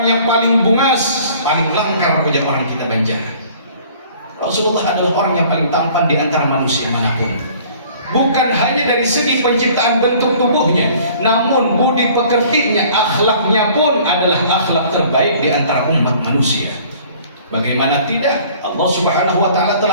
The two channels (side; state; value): both; inverted; correlation -0.52